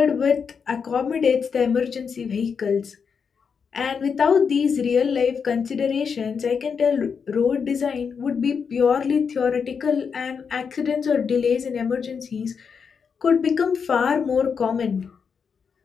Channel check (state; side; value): quieter; right; 6.2 dB